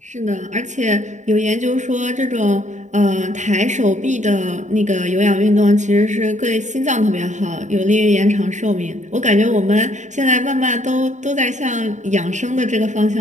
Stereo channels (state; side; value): late; left; 0.35 ms